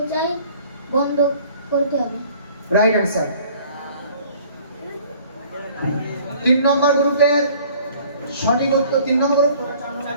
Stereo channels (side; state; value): both; inverted; correlation -0.53